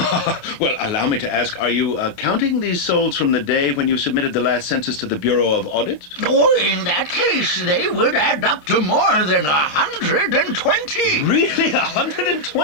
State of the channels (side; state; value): right; late; 28 ms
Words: Well, allow me to ask, are you counting these souls from the day when you submitted the last census to the Bureau of Audit? Oh, in that case, they would add up to more than 120. Really?